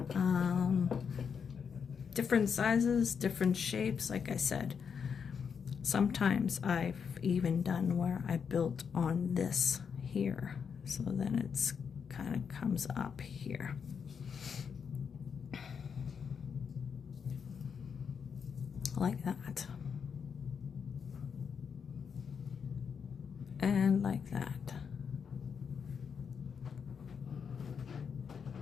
Different sizes, different shapes, like I said. Sometimes I've even done where I built on this here. So then it's kind of comes up here. Like that. And like that.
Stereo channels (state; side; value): quieter; right; 6.6 dB